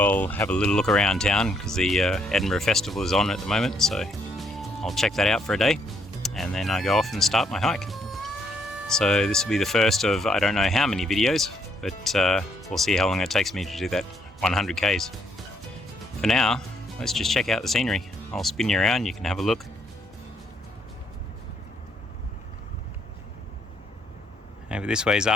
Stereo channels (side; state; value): both; normal; correlation 0.73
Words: have a little look around town because the Edinburgh Festival is on at the moment, so I'll check that out for a day and then I go off and start my hike. So this will be the first of I don't know how many videos, but we'll see how long it takes me to do that 100 Ks. For now, let's just check out the scenery. I'll spin you around, you can have a look. Over this way is